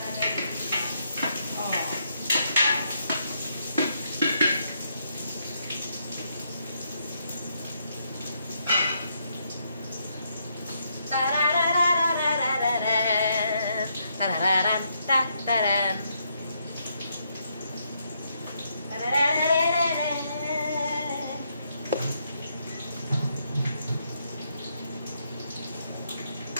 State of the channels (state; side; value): inverted; both; correlation -0.76